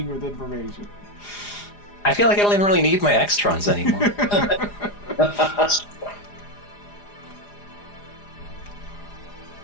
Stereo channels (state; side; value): late; right; 4.9 ms